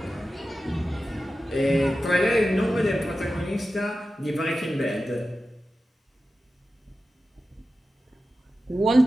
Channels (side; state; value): both; normal; correlation 0.93